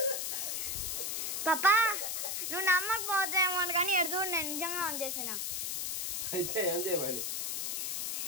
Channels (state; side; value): noise; left; hiss, 1 dB below the sound